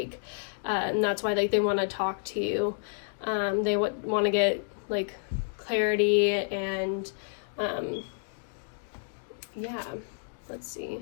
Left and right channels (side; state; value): right; silent; digital silence